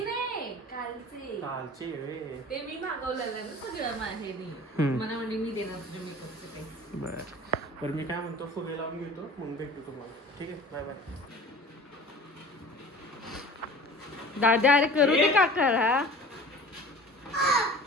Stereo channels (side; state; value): both; normal; correlation 0.42